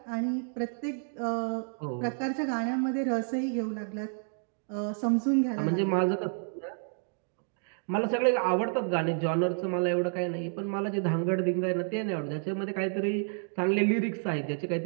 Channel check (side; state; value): left; silent; 58 dB below the other